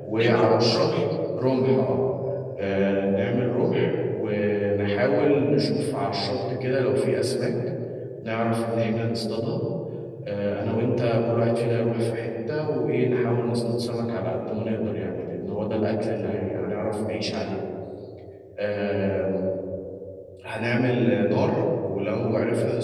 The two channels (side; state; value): both; identical; correlation 1.00